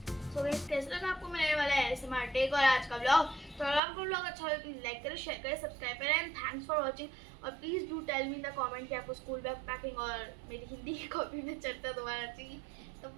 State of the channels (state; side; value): drops out; left; at 3.8 s